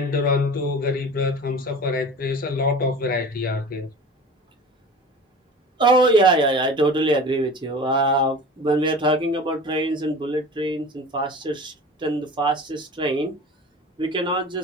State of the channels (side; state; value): both; normal; correlation 0.38